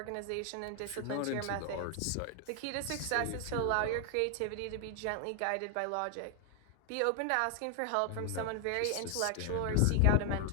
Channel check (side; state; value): both; different; correlation 0.01